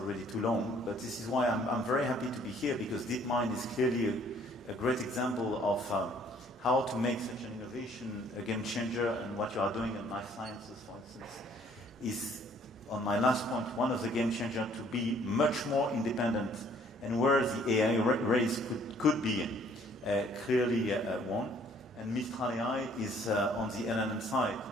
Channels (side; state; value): both; normal; correlation 0.60